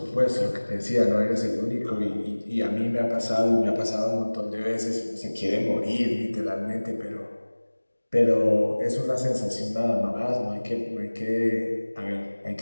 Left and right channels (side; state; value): both; inverted; correlation -1.00